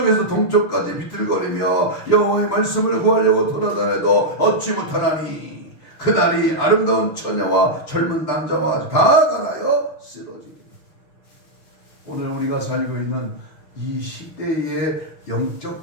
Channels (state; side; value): late; right; 6.4 ms